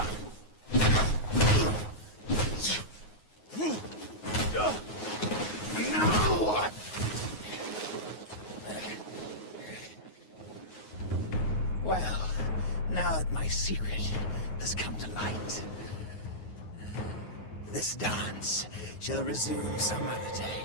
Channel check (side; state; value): right; late; 9.4 ms